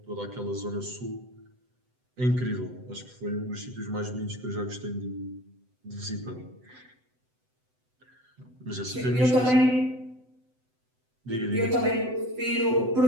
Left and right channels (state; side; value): late; left; 7.9 ms